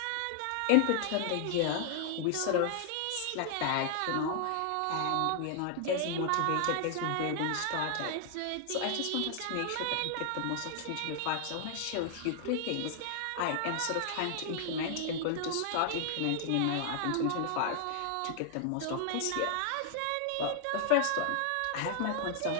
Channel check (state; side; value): different; both; correlation 0.00